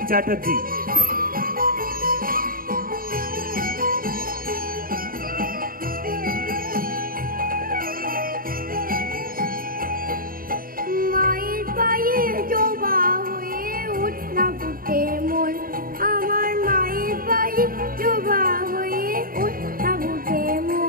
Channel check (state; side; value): late; left; 0.42 ms